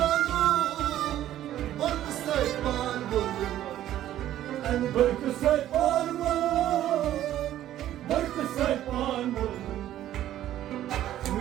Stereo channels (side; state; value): left; quieter; 12.6 dB